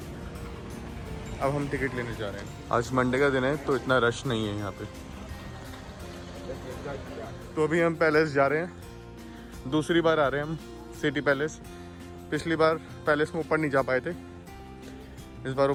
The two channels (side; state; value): both; identical; correlation 1.00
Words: अब हम टिकट लेने जा रहे हैं। आज मंडे का दिन है तो इतना रश नहीं है यहाँ पे। तो अभी हम पैलेस जा रहे हैं। दूसरी बार आ रहे हैं हम सिटी पैलेस। पिछली बार पैलेस में ऊपर नहीं जा पाए थे, इस बार